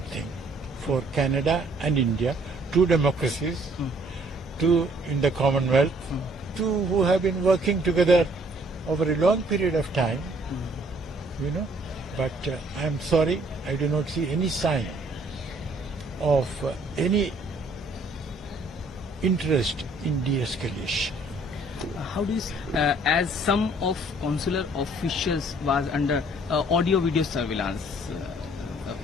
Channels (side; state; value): both; normal; correlation 0.61